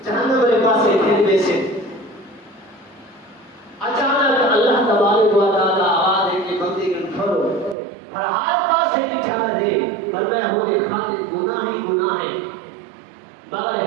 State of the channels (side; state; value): left; drops out; at 7.8 s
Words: جہنم والے پاس تھے ویسے اچانک اللہ تبارک و تعالی آواز ہے کہ بندے کے پھرو ہر حال پاس سے بچھا دے فرمایا ہو کے خاطر گناہ ہی گناہ ہے